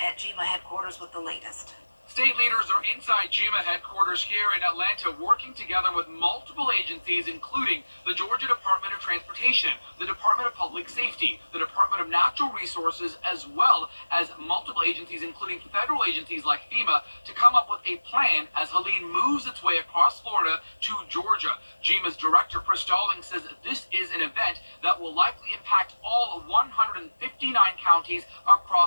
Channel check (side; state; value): both; inverted; correlation -1.00